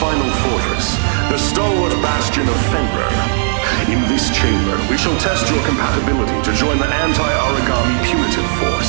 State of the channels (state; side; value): silent; left; digital silence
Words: fortress, the stalwart bastion of Fenrir. In this chamber, we shall test your compatibility to join the anti-origami punitive